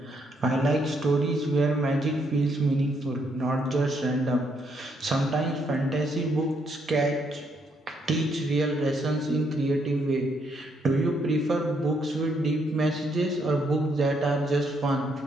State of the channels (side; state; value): both; normal; correlation 0.74